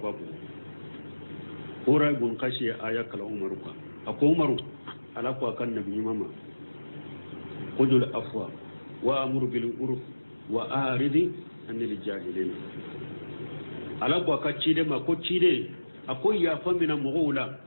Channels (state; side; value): inverted; both; correlation -1.00